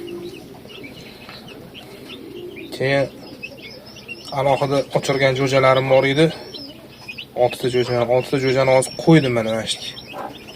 Keyin alohida ochirgan jo'jalarim bor edi. 6 ta jo'jani hozir qo'ydim mana shu.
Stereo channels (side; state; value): both; identical; correlation 1.00